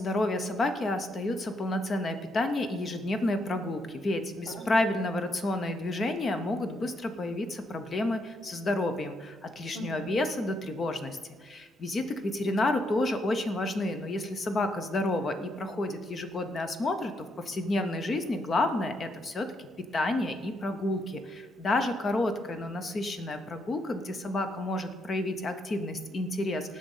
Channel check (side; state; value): both; normal; correlation 0.77